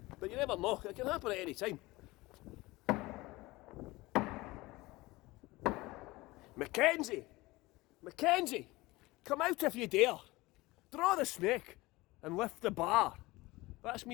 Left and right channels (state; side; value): quieter; right; 20.7 dB